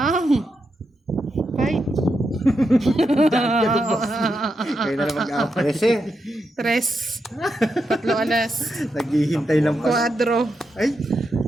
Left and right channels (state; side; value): normal; both; correlation 0.85